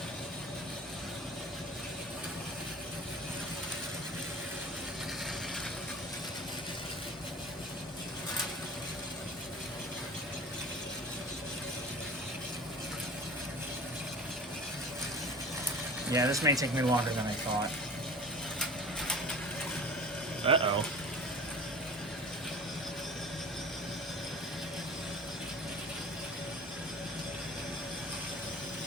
Yeah, this may take me longer than I thought. Uh-oh.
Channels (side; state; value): both; normal; correlation 0.40